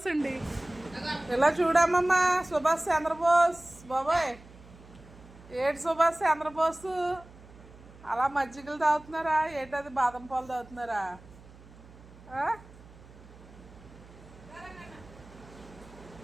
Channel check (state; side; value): noise; right; hum, 21 dB below the sound